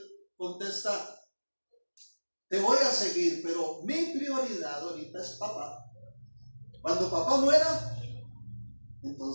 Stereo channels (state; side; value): inverted; both; correlation -1.00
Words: contesta, te voy a seguir, pero mi prioridad ahorita es papá. Cuando papá muera,